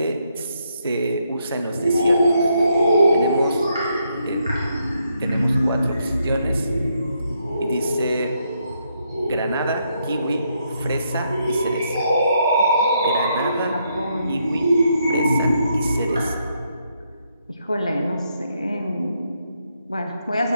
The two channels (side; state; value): both; inverted; correlation -0.77